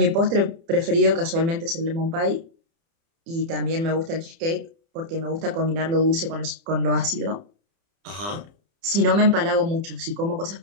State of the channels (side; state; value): left; late; 30 ms